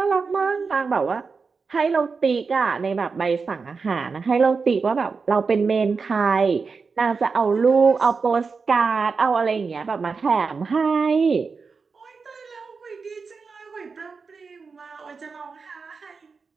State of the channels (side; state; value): left; quieter; 4.9 dB